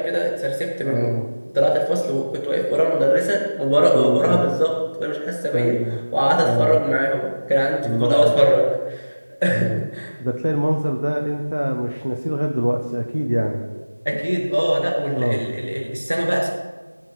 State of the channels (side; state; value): both; inverted; correlation -1.00